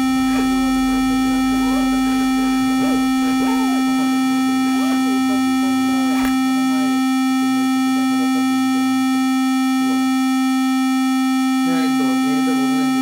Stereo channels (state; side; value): identical; both; correlation 1.00